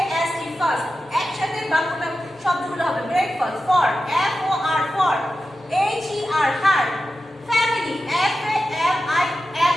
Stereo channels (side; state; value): both; normal; correlation 0.92